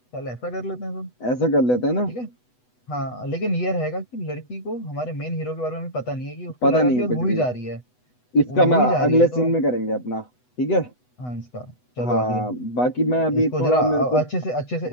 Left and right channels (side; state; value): right; late; 8.1 ms